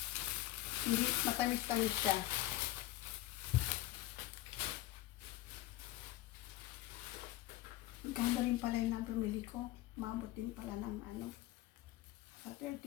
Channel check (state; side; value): quieter; right; 16.5 dB